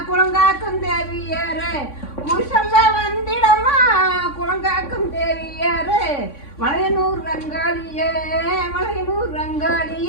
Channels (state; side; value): late; right; 3.6 ms